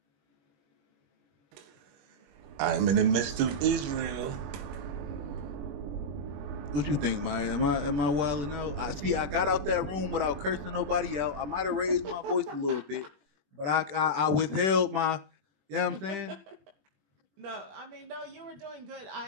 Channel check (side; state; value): left; late; 21 ms